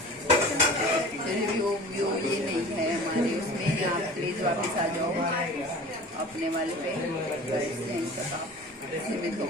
वो ये नहीं है हमारे उसमें। आप प्लीज वापस आ जाओ अपने वाले पे, सीमित हो,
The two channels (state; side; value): normal; both; correlation 0.40